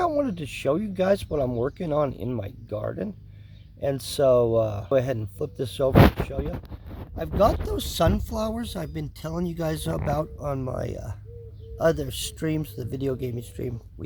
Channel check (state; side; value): identical; both; correlation 1.00